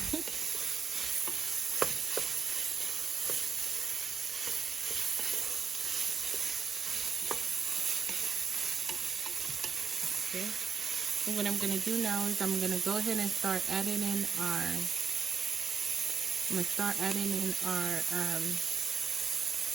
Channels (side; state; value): left; quieter; 6.0 dB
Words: Okay. And what I'm going to do now is I'm going to go ahead and start adding in our